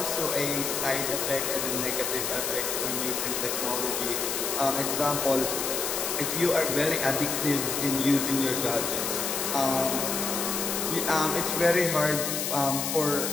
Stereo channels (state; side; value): noise; left; hiss, 1 dB below the sound